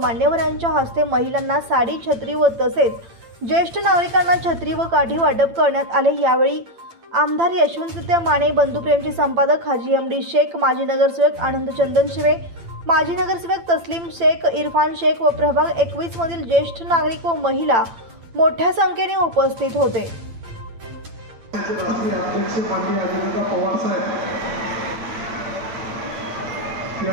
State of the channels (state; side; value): late; left; 8.8 ms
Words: मान्यवरांच्या हस्ते महिलांना साडी, छत्री व तसेच ज्येष्ठ नागरिकांना छत्री व काठी वाटप करण्यात आले। यावेळी आमदार यशवंतराव माने, बंधुप्रेमचे संपादक हाजी एमडी शेख, माजी नगरसेवक आनंद चंदन शिवे, माजी नगरसेवक तस्लीम शेख, इरफान शेख व प्रभाग 21 मधील ज्येष्ठ नागरिक व महिला मोठ्या संख्येने उपस्थित होते। राष्ट्रीय अध्यक्ष माननीय अजितदादा पवार साहेब